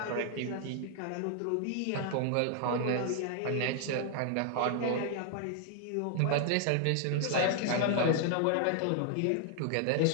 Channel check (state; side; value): different; both; correlation 0.00